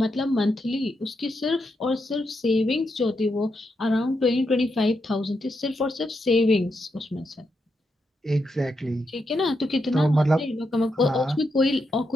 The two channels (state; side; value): normal; both; correlation 0.83